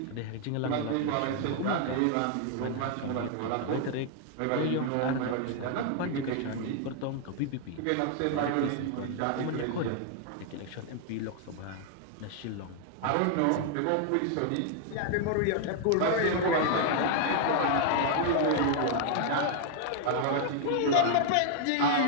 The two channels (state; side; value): different; both; correlation 0.00